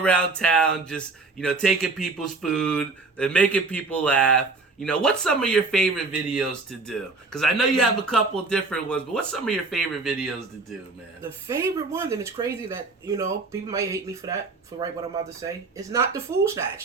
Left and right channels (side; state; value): left; quieter; 3.8 dB